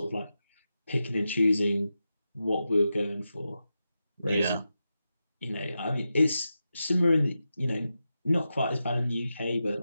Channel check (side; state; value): both; inverted; correlation -0.90